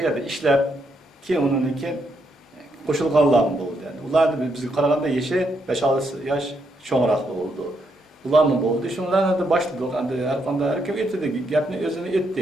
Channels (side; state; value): both; normal; correlation 0.78